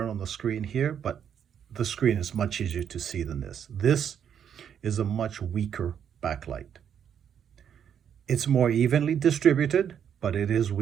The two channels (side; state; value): left; quieter; 8.5 dB